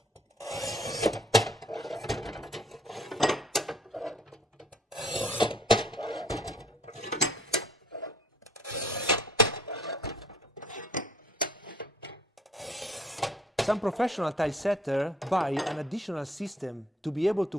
Some professional tile setters buy an additional system to be able to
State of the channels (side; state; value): both; normal; correlation 0.59